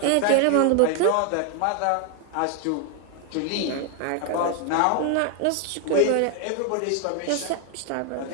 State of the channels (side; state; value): both; different; correlation 0.00